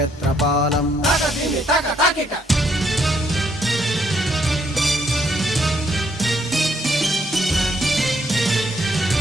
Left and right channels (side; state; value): both; normal; correlation 0.71